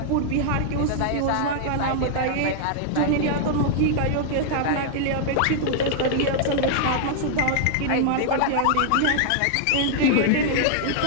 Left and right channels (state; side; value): different; both; correlation -0.01